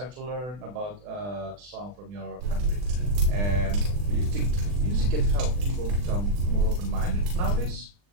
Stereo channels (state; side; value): late; left; 40 ms